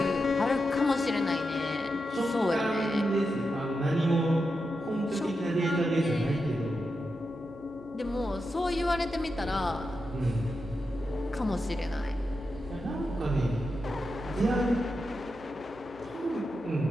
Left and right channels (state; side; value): noise; right; hum, 22 dB below the sound